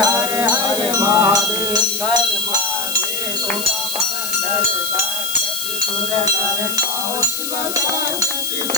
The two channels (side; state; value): left; noise; hiss, 4 dB below the sound